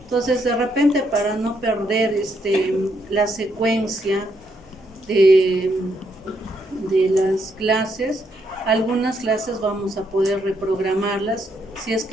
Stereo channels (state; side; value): normal; both; correlation 0.76